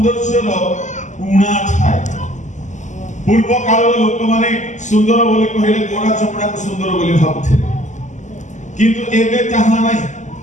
उणा थाए। पूर्व काल लोक माने सुंदर बोली कहले गोरा चमड़ा को सुंदर बोली भाबुथिले, किंतु एबे ताहा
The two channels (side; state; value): right; late; 0.35 ms